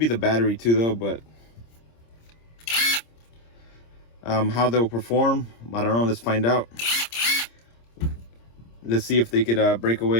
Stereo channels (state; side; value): late; right; 26 ms